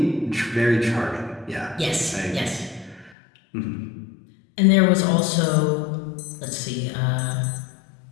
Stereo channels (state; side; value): drops out; right; at 3.2 s